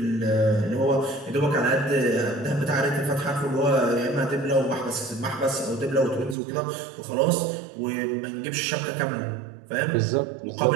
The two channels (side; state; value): left; drops out; at 6.4 s